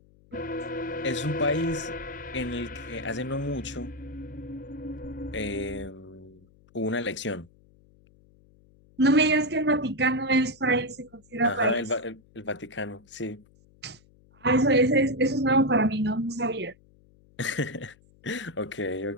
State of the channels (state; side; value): noise; left; hum, 28 dB below the sound